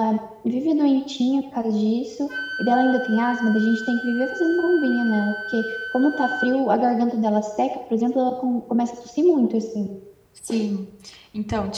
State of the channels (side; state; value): both; identical; correlation 1.00